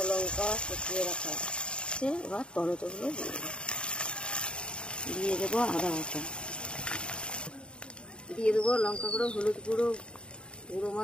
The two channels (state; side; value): late; right; 0.053 ms